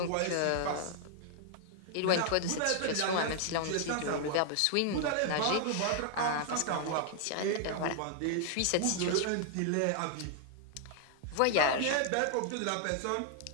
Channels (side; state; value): both; different; correlation 0.00